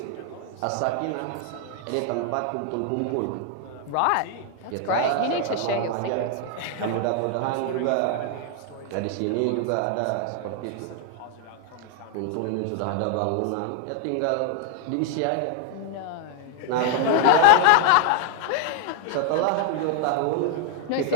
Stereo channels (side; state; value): both; different; correlation 0.00